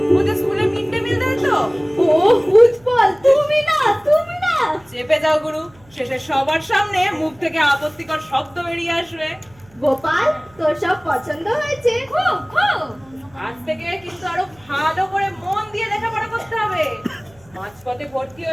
ওদের স্কুলে মিড ডে মিল দেয় তো। ও উৎপল, তুমি না, তুমি না। চেপে যাও গুরু, শেষে সবার সামনে মুখ থেকে আপত্তিকর শব্দ বেরিয়ে আসবে। গোপাল, তোর সব পছন্দ হয়েছে? খুব খুব। আজ থেকে কিন্তু আরো ভালো করে মন দিয়ে লেখাপড়া করতে হবে। মাঝপথে ভর্তি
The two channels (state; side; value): noise; right; hum, 28 dB below the sound